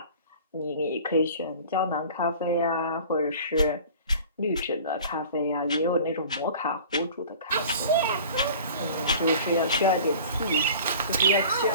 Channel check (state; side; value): inverted; both; correlation -0.43